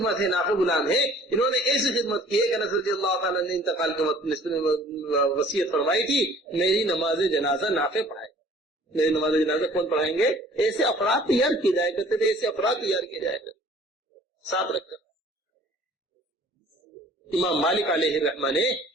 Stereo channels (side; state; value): both; normal; correlation 0.52